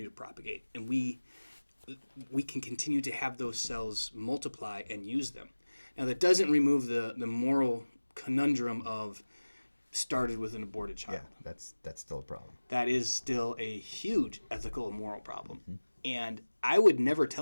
to propagate, and we can continue to have those cells multiply and use them. Now, that doesn't remove the moral conundrum of started with an aborted child. Yeah, that's still a problem. That is still a huge ethical and moral problem. Mm-hmm. And I would never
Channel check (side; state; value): both; inverted; correlation -1.00